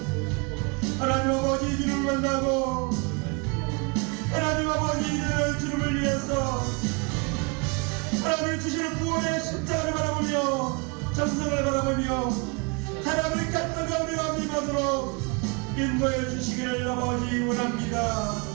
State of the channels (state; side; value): quieter; left; 31.2 dB